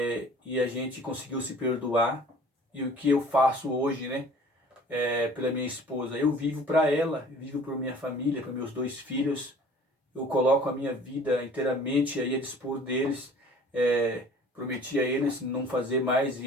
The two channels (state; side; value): normal; both; correlation 0.49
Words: a gente conseguiu se perdoar. E o que eu faço hoje, né? Pela minha esposa, eu vivo para ela, vivo por minha família, para meus 2 filhos. Eu coloco a minha vida inteiramente aí a dispor deles. Prometi a eles não fazer mais